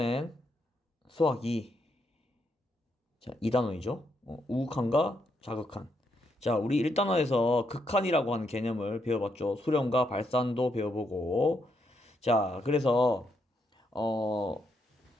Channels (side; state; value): both; normal; correlation 0.79